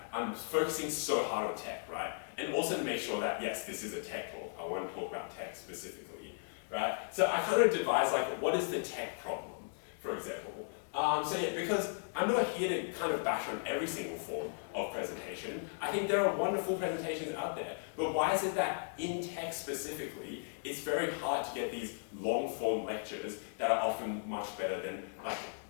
I'm focusing so hard on tech, right? And also to make sure that, yes, this is a tech talk. I want to talk about tech specifically, right? So I kind of devised what is the tech problem, for example. Because I'm not here to kind of bash on every single form of presentation. I think there are wonderful presentations out there, but why is it that in tech specifically, it's very hard to get these long form lectures that are often much better than,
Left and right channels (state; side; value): silent; right; digital silence